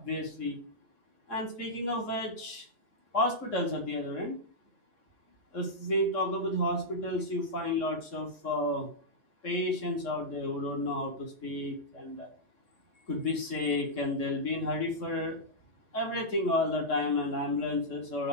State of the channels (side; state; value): right; late; 3.6 ms